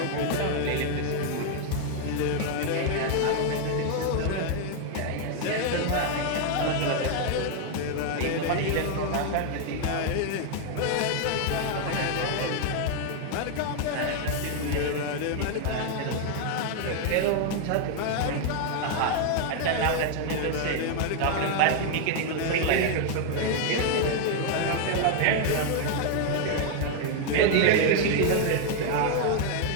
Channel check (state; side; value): different; both; correlation 0.00